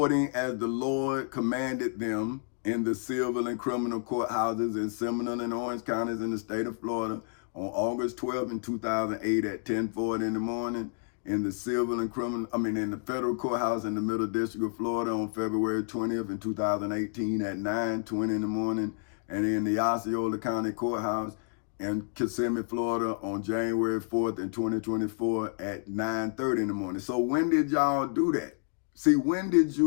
as the Lord commanded them in the civil and criminal courthouses in Seminole and Orange counties in the state of Florida on August 12 in 2008 at 10:40 in the morning. In the civil and criminal, in the federal courthouse in the Middle District of Florida on February 20th in 2018 at 9:20 in the morning, and in the Osceola County Courthouse in Kissimmee, Florida on January 4th in 2024 at 9:30 in the morning. So when did y'all do that? See, when did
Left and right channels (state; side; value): silent; right; 58 dB below the other